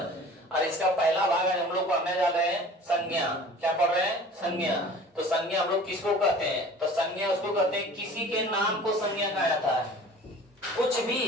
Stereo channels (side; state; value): both; normal; correlation 0.44